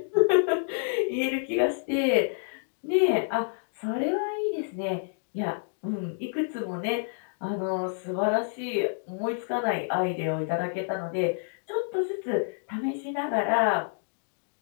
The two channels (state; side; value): silent; right; digital silence